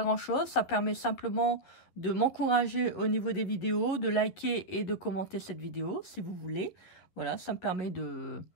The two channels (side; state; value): right; late; 11 ms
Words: Ça permet simplement de m'encourager au niveau des vidéos, de liker et de commenter cette vidéo si vous voulez. Voilà, ça me permet de